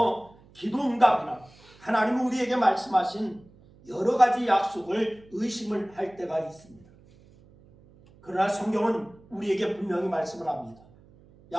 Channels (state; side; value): noise; right; hum, 26 dB below the sound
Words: 기도응답이나 하나님은 우리에게 말씀하신 여러 가지 약속을 의심을 할 때가 있습니다. 그러나 성경은 우리에게 분명히 말씀을 합니다.